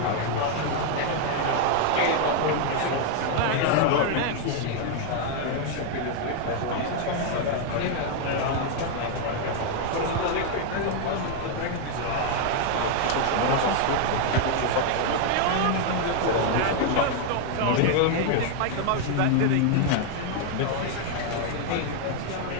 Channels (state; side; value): different; both; correlation 0.00